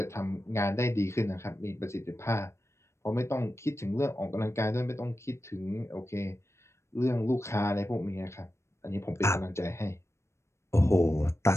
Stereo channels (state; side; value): late; right; 0.13 ms